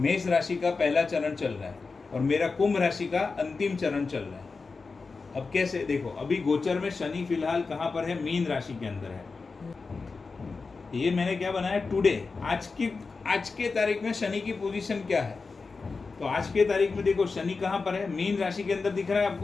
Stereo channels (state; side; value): quieter; right; 4.3 dB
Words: राशि का पहला चरण चल रहा है, और मेरा कुंभ राशि का अंतिम चरण चल रहा है। अब कैसे देखो, अभी गोचर में शनि फिलहाल कहाँ पर है? मीन राशि के अंदर है। ये मैंने क्या बनाया? टुडे, आज के तारीख में शनि की पोजीशन क्या है? तो आज के तारीख में देखो शनि कहाँ पर है? मीन राशि के अंदर दिख रहा है